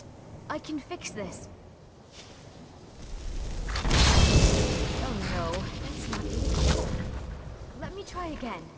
I can fix this. Oh no, that's not easy. Let me try again.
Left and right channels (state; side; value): identical; both; correlation 1.00